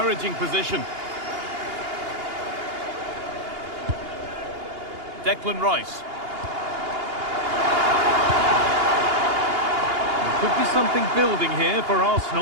position. Declan Rice. Could be something building here for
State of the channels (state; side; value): late; left; 2.8 ms